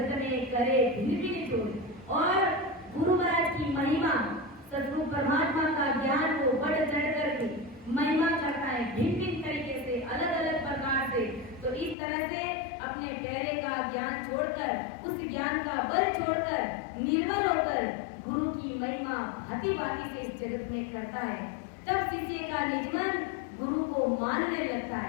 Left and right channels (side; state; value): right; drops out; at 12.0 s